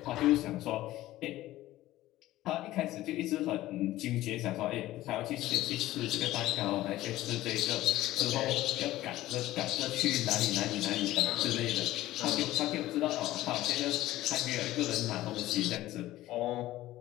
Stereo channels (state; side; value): quieter; right; 15.8 dB